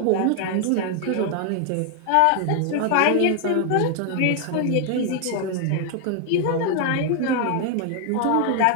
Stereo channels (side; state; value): both; different; correlation 0.00